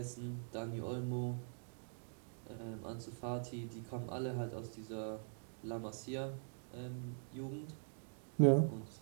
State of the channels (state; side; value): silent; left; digital silence